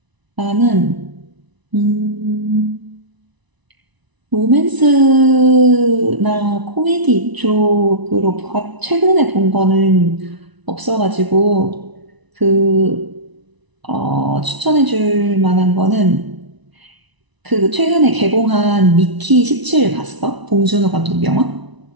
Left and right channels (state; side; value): late; left; 1.0 ms